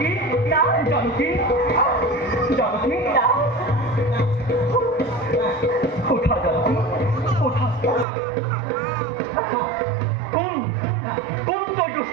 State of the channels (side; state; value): left; drops out; at 8.1 s